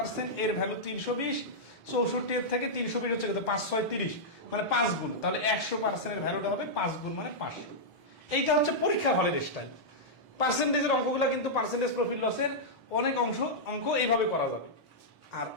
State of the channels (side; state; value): both; normal; correlation -0.08